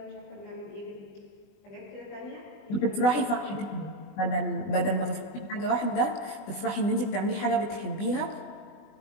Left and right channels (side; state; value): right; late; 20 ms